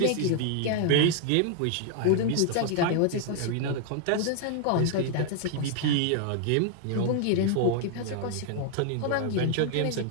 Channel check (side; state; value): both; different; correlation 0.00